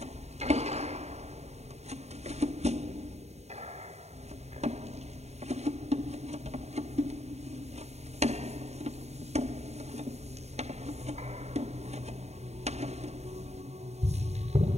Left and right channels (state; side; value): late; left; 0.32 ms